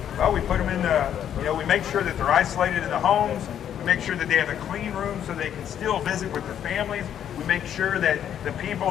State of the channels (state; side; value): quieter; right; 9.7 dB